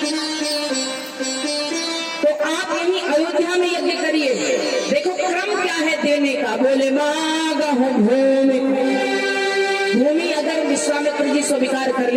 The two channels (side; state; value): both; identical; correlation 1.00